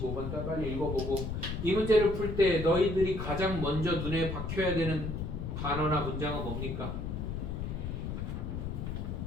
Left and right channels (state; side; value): noise; left; rumble, 4 dB below the sound